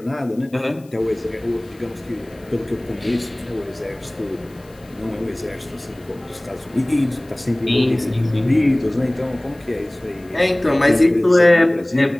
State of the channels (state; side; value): noise; left; hiss, 29 dB below the sound